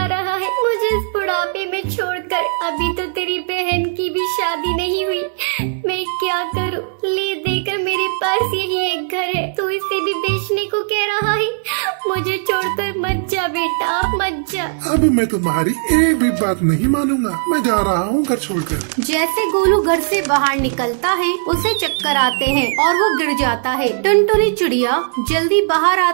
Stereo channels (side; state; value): left; silent; digital silence